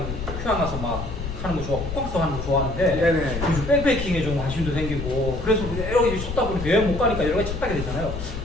휴양 가서 막 하는 거 좋아, 호캉스 하는 거 좋아하는데 네네. 요즘 백패킹에 좀 관심도 생기고 그래서 여러 가지 찾다 보니까 여행 못 가니까 여러 가지 찾게 되잖아요.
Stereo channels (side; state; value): left; noise; rumble, 6 dB below the sound